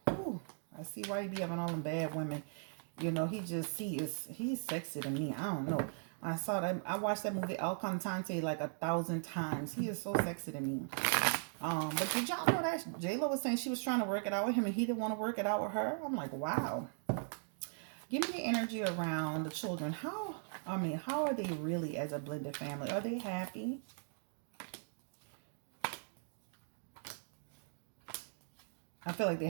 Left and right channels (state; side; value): silent; left; digital silence